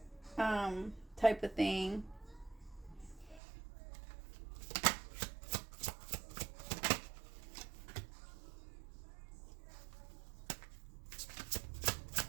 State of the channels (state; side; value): drops out; left; at 3.4 s